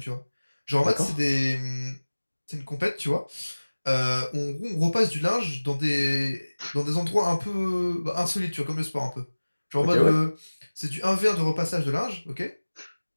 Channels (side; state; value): both; inverted; correlation -1.00